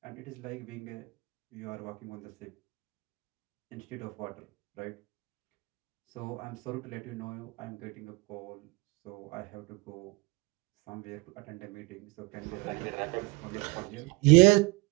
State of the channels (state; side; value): quieter; left; 25.2 dB